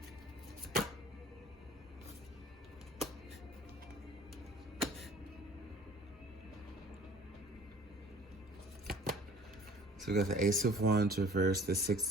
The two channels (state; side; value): normal; both; correlation 0.50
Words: So we got the Ace of Wands reversed, the